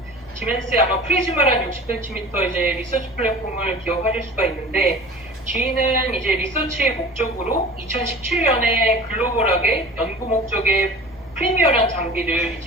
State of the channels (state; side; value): normal; both; correlation 0.39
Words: 지멘스의 아마 프리즈마란 60cm 이제 리서치 플랫폼을 기억하실 수가 있는데, GE는 이제 리서치의 목적으로 2017년에 글로벌하게 연구 목적의 프리미어라는 장비를